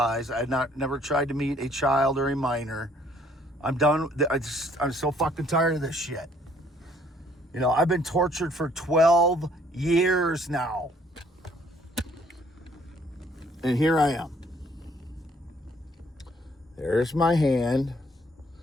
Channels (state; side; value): normal; both; correlation 0.63